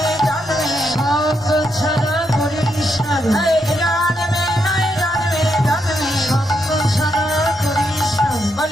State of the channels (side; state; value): both; normal; correlation 0.80